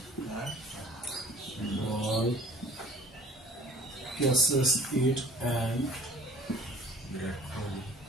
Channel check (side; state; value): both; normal; correlation 0.50